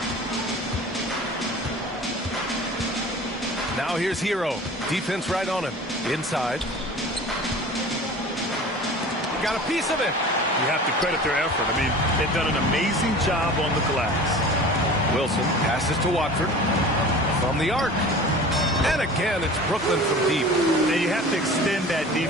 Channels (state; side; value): normal; both; correlation 0.39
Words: Now here's Hero. Defense right on him. Inside. Got a piece of it. You have to credit their effort. I mean, they've done an amazing job on the glass. Wilson passes to Watford from the arc. And again, it's Brooklyn from deep. And you have to extend that